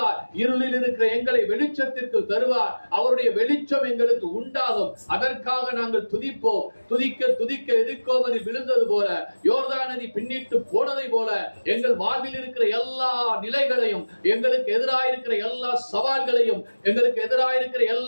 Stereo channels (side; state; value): both; inverted; correlation -1.00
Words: இருளில் இருக்கிற எங்களை வெளிச்சத்திற்கு தருவார். அவருடைய வெளிச்சம் எங்களுக்கு உண்டாகும். அதற்காக நாங்கள் துதிப்போம். துதிக்க துதிக்க எதிர்கோவதில் விழுந்தது போல யோர்தான் நதி பின்னிட்டு போனதை போல எங்கள் வாழ்வில் இருக்கிற எல்லா நிலைகளையும் எங்களுக்கு எதிராயிருக்கிற எல்லா சவால்களையும் எங்களுக்கு எதிராயிருக்கிற